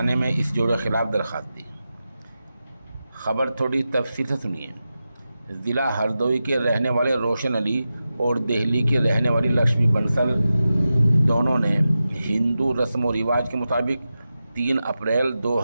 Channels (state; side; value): inverted; both; correlation -0.92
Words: میں اس جوڑے کے خلاف درخواست دی۔ خبر تھوڑی تفصیل سے سنیے۔ ضلع ہردوئی کے رہنے والے روشن علی اور دہلی کی رہنے والی لکشمی بنسل دونوں نے ہندو رسم و رواج کے مطابق 3 اپریل